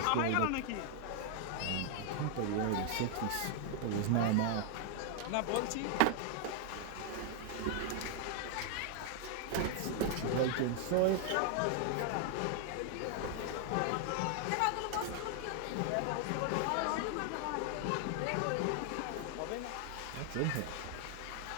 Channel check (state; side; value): different; both; correlation 0.00